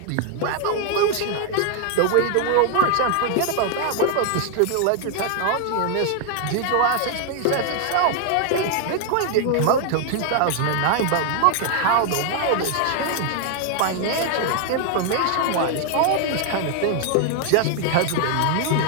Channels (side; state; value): both; different; correlation 0.00